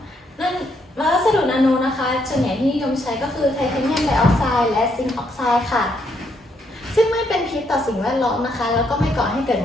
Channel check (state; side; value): normal; both; correlation 0.74